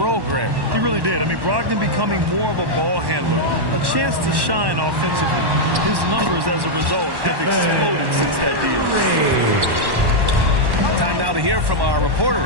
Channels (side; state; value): left; late; 1.1 ms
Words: Grant. He really did. I mean, Brogdon becoming more of a ball handler, a chance to shine offensively. His numbers, as a result, have exploded since that deal. Time now to hear from our reporter,